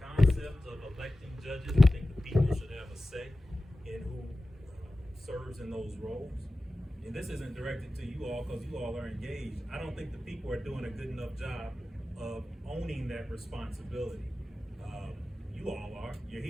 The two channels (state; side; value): normal; both; correlation 0.95